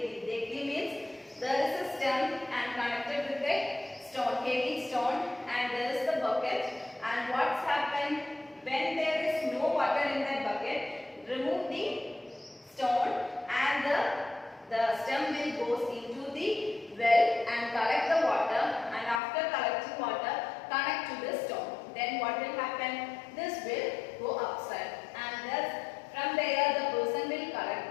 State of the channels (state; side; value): drops out; right; at 19.2 s